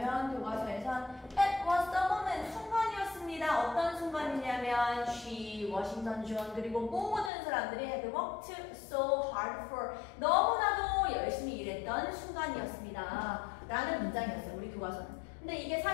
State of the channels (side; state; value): right; drops out; at 7.3 s